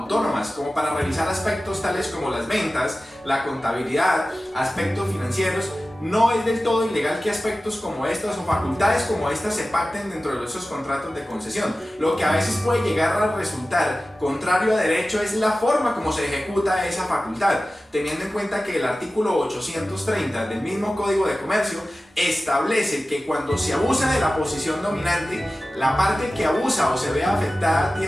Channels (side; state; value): both; normal; correlation 0.95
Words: como para revisar aspectos tales como las ventas, la contabilidad, aspectos financieros, no es del todo ilegal que aspectos como estas o facultades como estas se pacten dentro de esos contratos de concesión. Lo que a veces puede llegar a resultar contrario a derecho es la forma como se ejecuta esa facultad, teniendo en cuenta que el artículo 830 del mismo Código de Comercio establece que cuando se abusa de la posición dominante, la parte que abusa o se ve afectada